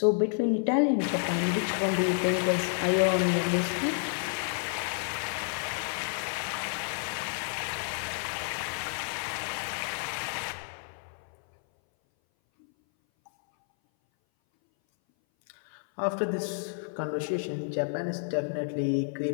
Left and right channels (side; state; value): right; silent; 58 dB below the other